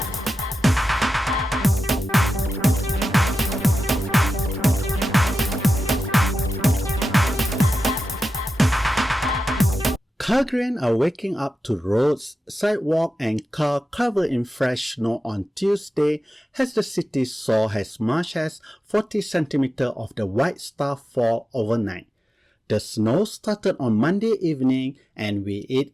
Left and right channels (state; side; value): normal; both; correlation 0.92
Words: Calgarians are waking up to roads, sidewalks and cars covered in fresh snow on Tuesday as the city saw as much as 40 centimeters of the white stuff fall overnight. The snow started on Monday evening and with